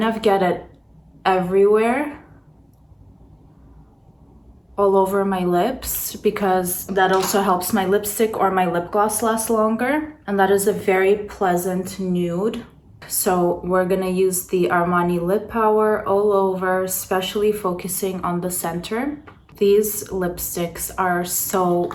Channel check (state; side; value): identical; both; correlation 1.00